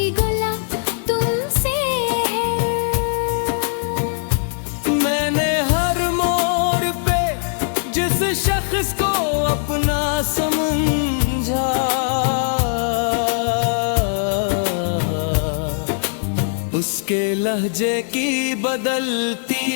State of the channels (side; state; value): right; silent; 66 dB below the other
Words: गला तुमसे है। मैंने हर मोड़ पे जिस शख्स को अपना समझा, उसके लहजे की